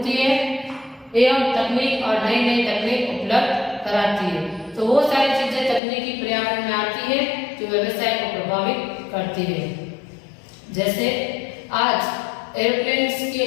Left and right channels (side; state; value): right; drops out; at 5.8 s